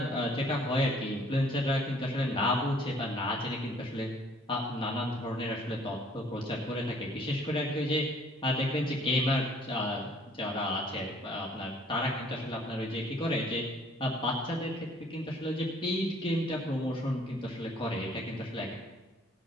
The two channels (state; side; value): normal; both; correlation 0.58